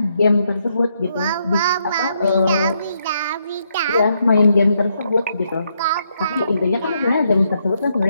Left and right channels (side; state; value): both; inverted; correlation -0.76